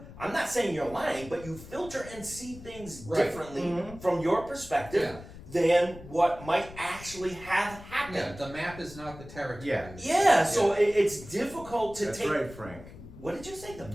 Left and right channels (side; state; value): left; noise; rumble, 16 dB below the sound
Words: I'm not saying you're lying, but you filter and see things Right. differently from your perspective than what might actually have happened. Yeah, the map is not the territory. Yeah. So it's difficult to That's take. right, Frank. What did you say? The